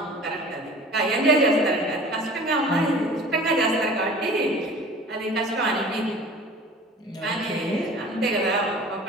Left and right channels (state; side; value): normal; both; correlation 0.43